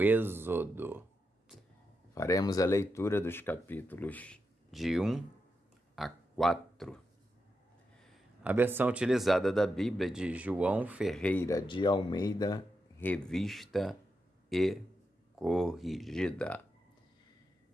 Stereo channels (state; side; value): normal; both; correlation 0.87